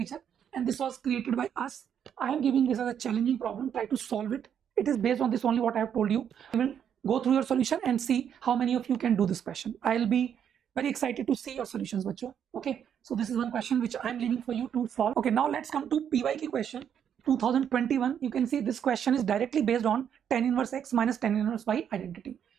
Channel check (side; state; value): left; quieter; 8.6 dB